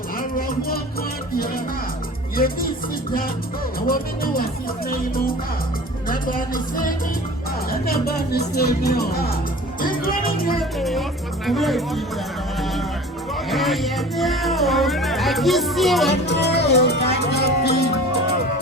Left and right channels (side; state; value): both; normal; correlation 0.41